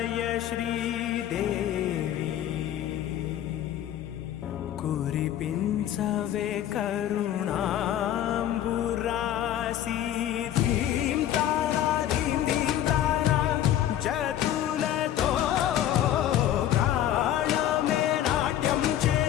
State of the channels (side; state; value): right; quieter; 11.6 dB